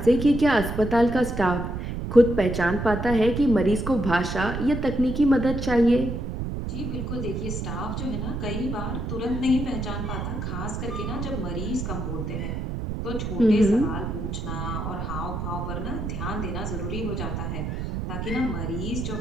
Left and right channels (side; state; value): right; noise; rumble, 4 dB below the sound